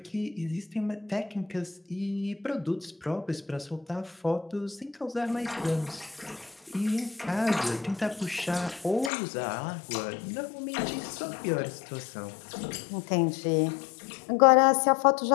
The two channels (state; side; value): drops out; right; at 9.1 s